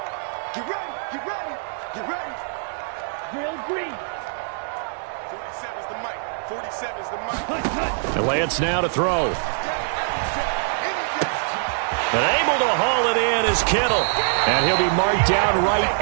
Get ready, get ready, get ready. The Lance now to throw. But able to haul it in is Kittle. And he'll be marked down right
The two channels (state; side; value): silent; left; digital silence